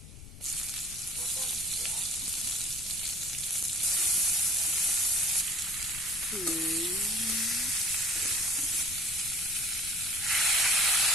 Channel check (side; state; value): left; noise; rumble, 16 dB below the sound